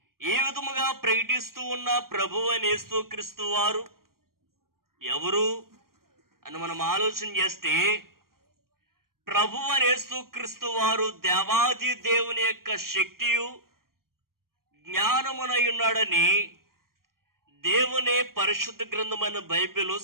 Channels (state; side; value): late; left; 0.92 ms